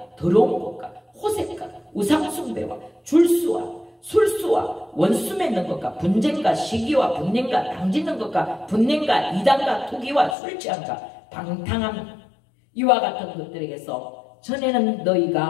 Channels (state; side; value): drops out; right; at 10.4 s